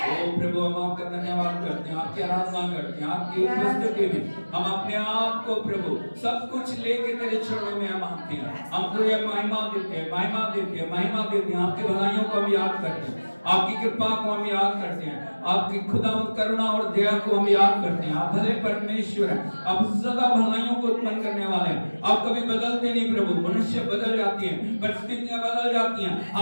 ओ प्रभु, हम आपका धन्यवाद करते हैं, आपकी आराधना करते हैं, आपकी उपस्थिति में हम अपने आप को प्रभु सब कुछ लेके तेरे चरणों में हम आते हैं। हम तुझे महिमा देते हैं, महिमा देते हैं, महिमा देते हैं। आपकी भलाइयों को हम याद करते हैं, आपकी कृपा को हम याद करते हैं, आपकी खुदावंद करुणा और दया को हम याद करते हैं। आप भले परमेश्वर हैं, आप सदा भलाइयों को उत्पन्न करने वाले हैं। आप कभी बदलते नहीं प्रभु। मनुष्य बदल जाती हैं, परिस्थितियां बदल जाती हैं,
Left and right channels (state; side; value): inverted; both; correlation -1.00